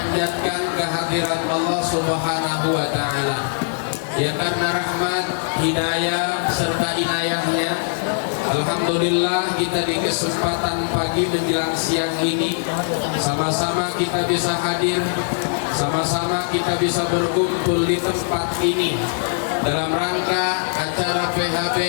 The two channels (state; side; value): silent; right; digital silence